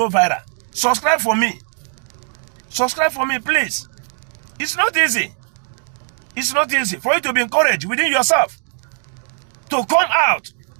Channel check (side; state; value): left; silent; digital silence